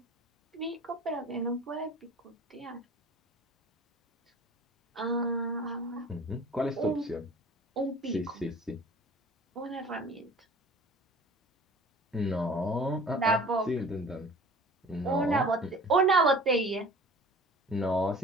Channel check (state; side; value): normal; both; correlation 0.44